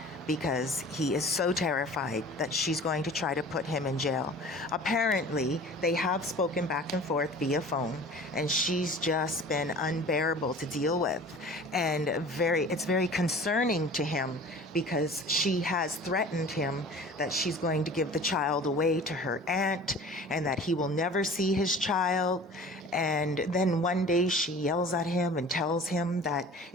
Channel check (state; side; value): normal; both; correlation 0.43